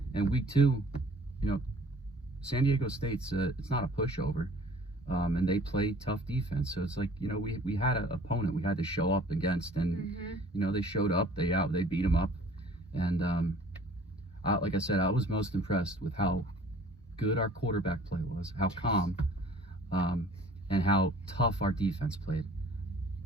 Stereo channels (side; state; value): both; normal; correlation 0.51